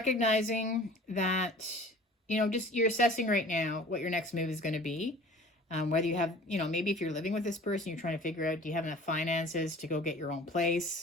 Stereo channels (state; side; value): normal; both; correlation 0.45